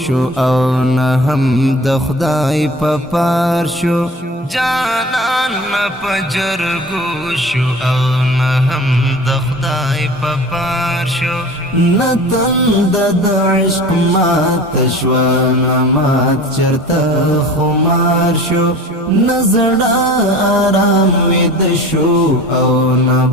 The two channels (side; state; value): both; normal; correlation 0.40